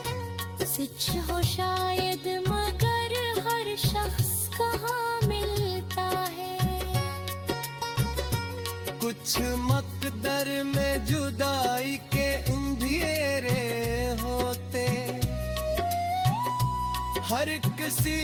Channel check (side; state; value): both; identical; correlation 1.00